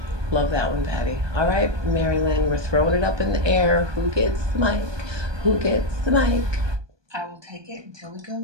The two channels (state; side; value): late; left; 1.2 ms